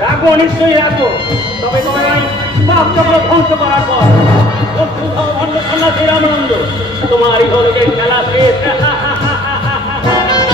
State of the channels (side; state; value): both; normal; correlation 0.55